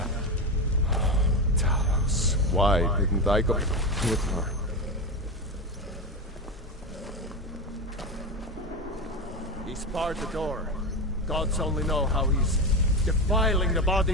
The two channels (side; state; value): both; normal; correlation 0.17